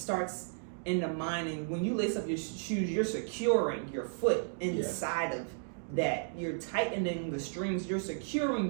in the mind, and when you lace up your shoes, you're securing your foot inside of that. You're tightening the strings. You're securing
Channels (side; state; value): left; silent; digital silence